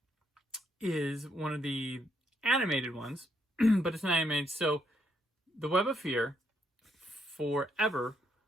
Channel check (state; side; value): normal; both; correlation 0.74